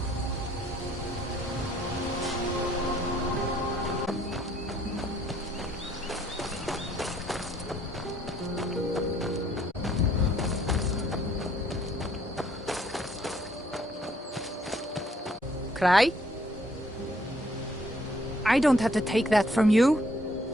Cry? I don't have to take that from you.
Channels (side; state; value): both; normal; correlation 0.65